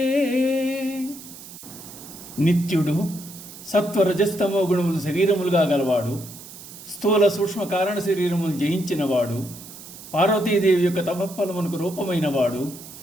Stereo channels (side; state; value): right; noise; hiss, 16 dB below the sound